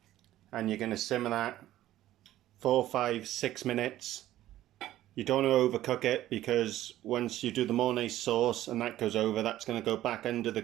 and you're going to simmer that 4, 5, 6 minutes. You don't want to overcook it, because once you do the mornay sauce and that goes over, that's going to go back under the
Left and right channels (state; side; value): quieter; left; 14.1 dB